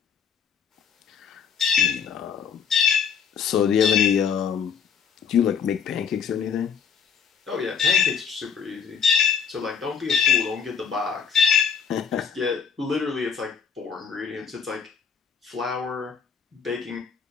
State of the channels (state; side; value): quieter; right; 6.9 dB